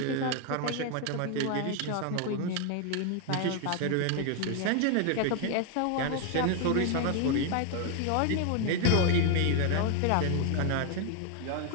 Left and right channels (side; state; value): both; different; correlation 0.01